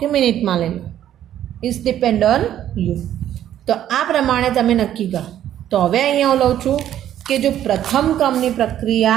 મિનિટમાં લઈ લો. It's depend on you. તો આ પ્રમાણે તમે નક્કી કરો. તો હવે અહીંયા હું લઉં છું કે જો પ્રથમ ક્રમની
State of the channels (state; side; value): quieter; left; 11.4 dB